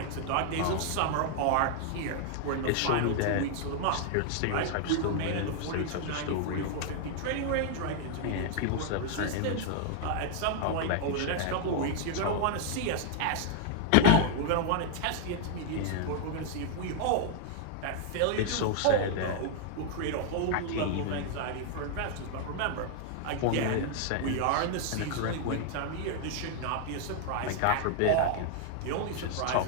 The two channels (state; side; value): different; both; correlation 0.00